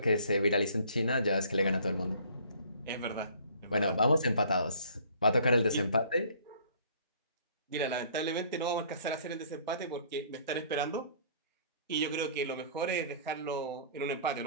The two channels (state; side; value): inverted; both; correlation -0.54